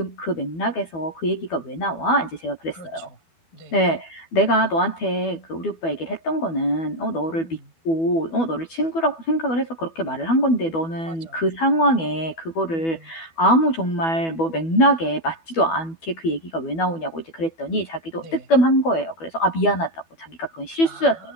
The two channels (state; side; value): late; right; 12 ms